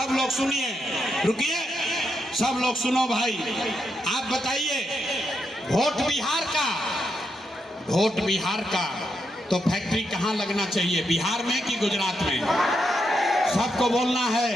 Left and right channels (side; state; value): both; normal; correlation 0.82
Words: लोग सुनिए, रुकिए, सब लोग सुनो भाई। आप बताइए, वोट बिहार का तो फैक्ट्री कहाँ लगना चाहिए, बिहार में कि गुजरात में? सबको बोलना है।